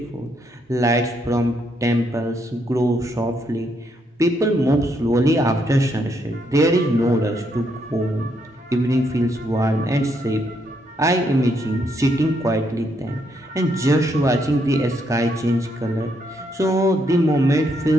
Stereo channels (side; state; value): both; normal; correlation 0.75